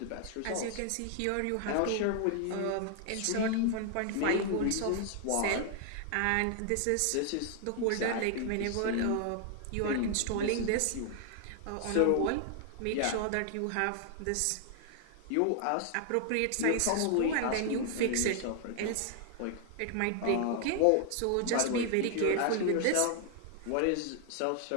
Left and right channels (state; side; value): different; both; correlation 0.00